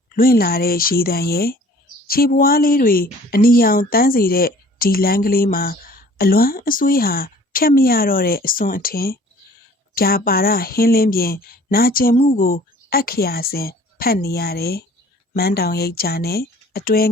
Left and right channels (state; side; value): normal; both; correlation 0.51